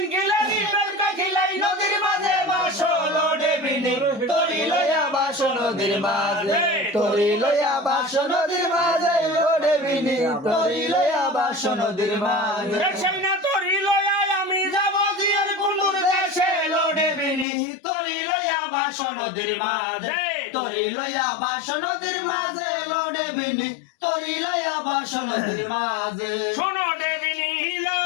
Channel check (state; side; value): drops out; right; at 17.4 s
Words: খিলারি বেলকা খিলাই নদীর মাঝে বাসো দেবিনী তরি লয়া বাসো নদীর মাঝে তরি লয়া বাসো নদীর মাঝে দেবিনী তরি লয়া বাসো নদীর মাঝে না তরি লয়া আমি যাব জিয়ার কুন্দুর দেশে দেবিনী তরি লয়া বাসো নদীর মাঝে তরি লয়া বাসো নদীর মাঝে দেবিনী তরি লয়া বাসো নদীর মাঝে শোনো দেবিনী হিলো